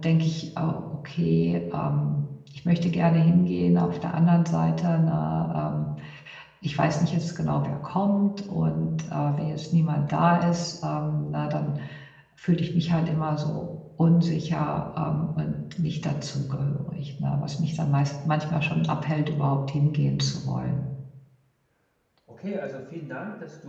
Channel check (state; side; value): identical; both; correlation 1.00